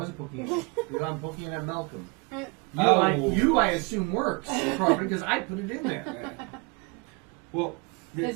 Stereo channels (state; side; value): quieter; left; 28.9 dB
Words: poking it. I'm poking it at Malcolm. Uh, You, I assume, works properly because I put it in there. Well,